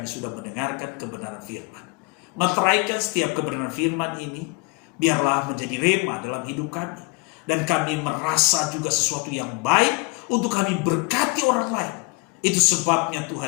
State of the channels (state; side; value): quieter; right; 27.7 dB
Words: sudah mendengarkan kebenaran firman. Meteraikan setiap kebenaran firman ini, biarlah menjadi rema dalam hidup kami. Dan kami merasa juga sesuatu yang baik untuk kami berkati orang lain. Itu sebabnya